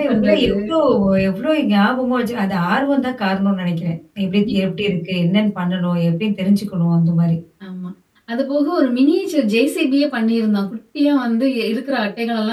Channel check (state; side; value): identical; both; correlation 1.00